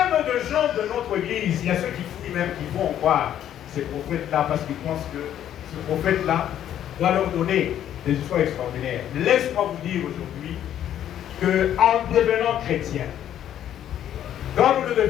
de gens de notre église, il y a ceux qui fouillent même, qui vont voir ces prophètes-là parce qu'ils pensent que ce prophète-là doit leur donner des histoires extraordinaires. Laisse-moi vous dire aujourd'hui qu'en devenant chrétien, quand nous le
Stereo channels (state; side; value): quieter; right; 10.8 dB